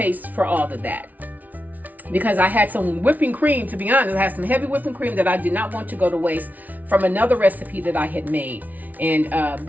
for all of that. Because I had some whipping cream, to be honest. I had some heavy whipping cream that I did not want to go to waste from another recipe that I had made. And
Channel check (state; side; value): late; left; 0.077 ms